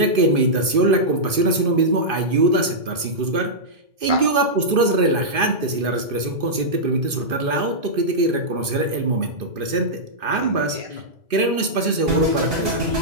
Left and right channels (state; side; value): late; left; 2.5 ms